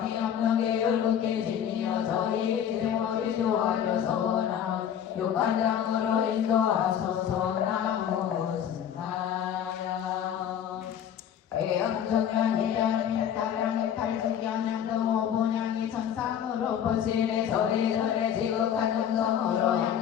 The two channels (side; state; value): right; quieter; 9.2 dB